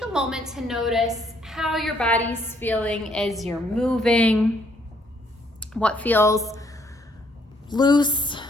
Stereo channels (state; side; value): normal; both; correlation 0.68